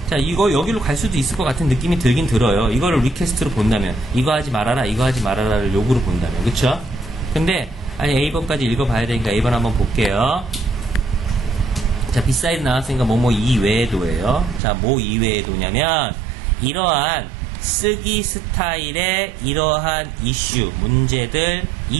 자, 이거 여기로 갈 수도 있을 것 같은 느낌이 들긴 들어요. 이거를 리퀘스트로 본다면, 이거 하지 말아라, 이거 하지 말아라를 요구로 본다면. 그쵸? 근데 아니, A번까지 읽어봐야 되니까 A번 한번 볼게요. 자, 비사이드 나왔으니까 뭐뭐 이외에도예요. 자, 뭐 이외에도냐면 이러한 쓰기 스타일의 이러한 이슈, 문제들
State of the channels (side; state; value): left; drops out; at 14.6 s